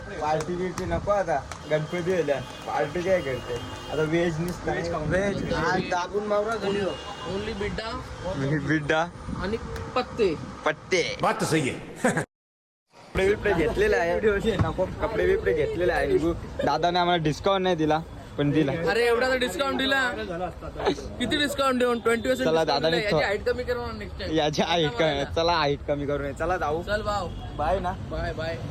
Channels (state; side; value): identical; both; correlation 1.00